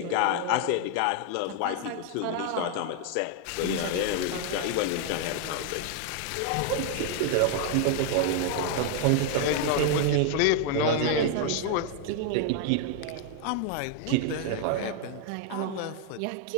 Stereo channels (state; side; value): different; both; correlation 0.00